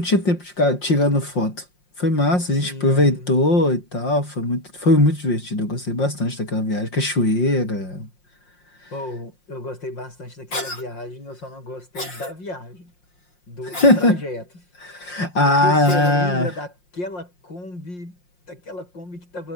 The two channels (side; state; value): right; late; 5.6 ms